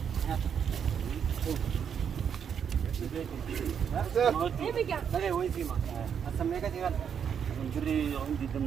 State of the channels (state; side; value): quieter; left; 7.7 dB